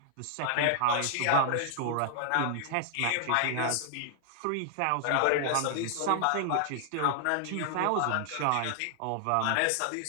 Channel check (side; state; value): both; different; correlation 0.00